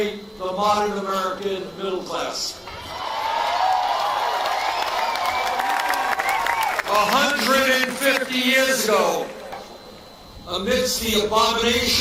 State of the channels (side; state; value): both; identical; correlation 1.00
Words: the modern American middle class. 150 years ago, amidst the